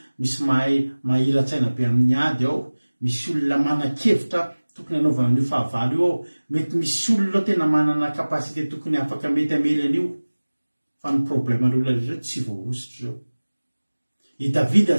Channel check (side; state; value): both; inverted; correlation -1.00